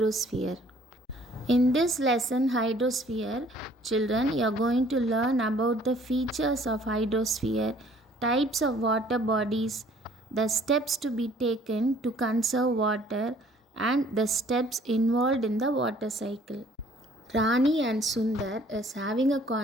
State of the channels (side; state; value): both; normal; correlation 0.58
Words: In this lesson Hydrosphere, children, you are going to learn about the features of hydrosphere, types of water bodies, the steps to be taken to conserve water and the steps involved in the water cycle. Rani and Sundar is having a